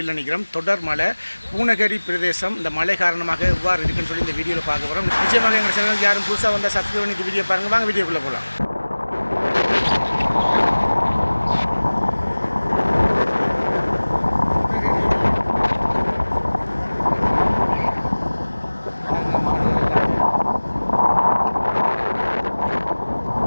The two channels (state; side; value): inverted; both; correlation -1.00